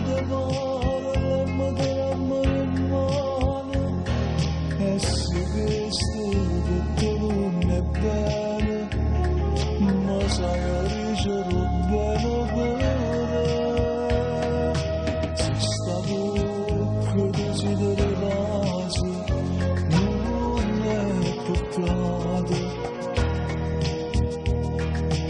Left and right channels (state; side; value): identical; both; correlation 1.00